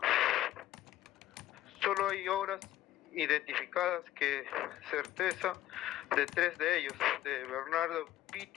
Solo hay obras identificadas que certeza de 3 de ellos, de Bernardo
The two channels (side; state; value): right; quieter; 13.9 dB